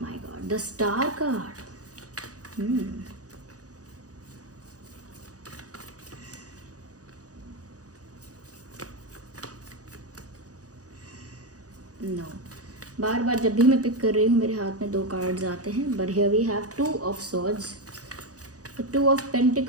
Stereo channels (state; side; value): late; left; 0.67 ms